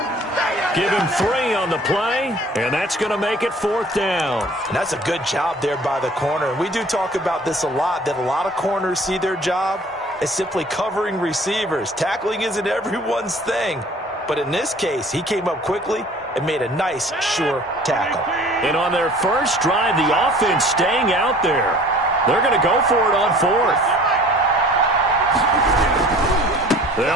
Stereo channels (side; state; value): both; normal; correlation 0.49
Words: Give him 3 on the play, and that's going to make it 4th down. And that's a good job there by the corner. And we do talk about this a lot, that a lot of corners see their job as simply covering receivers. Tackling isn't everyone's thing. But in this case, he came up quickly and made a nice, sure tackle. And on their first drive, the offense staying out there. They're going to go for it on 4th.